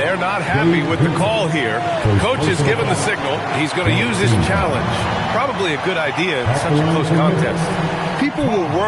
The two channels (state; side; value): identical; both; correlation 1.00